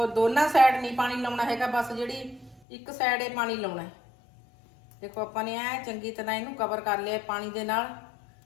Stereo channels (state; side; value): drops out; right; at 2.6 s